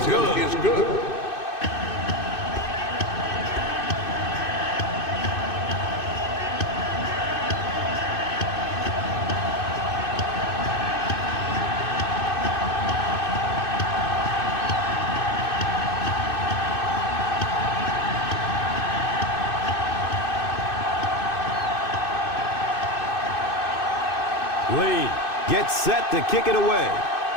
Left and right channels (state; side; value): late; right; 2.6 ms